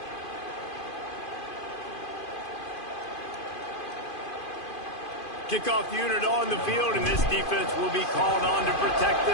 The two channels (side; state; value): right; late; 2.5 ms